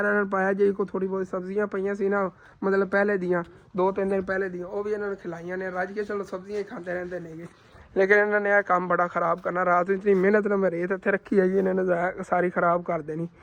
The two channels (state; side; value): identical; both; correlation 1.00